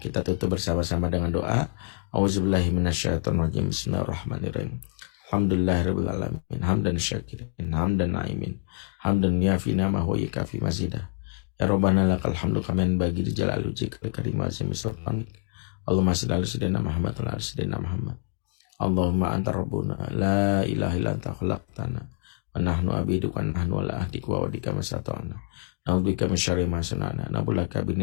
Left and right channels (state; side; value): silent; right; digital silence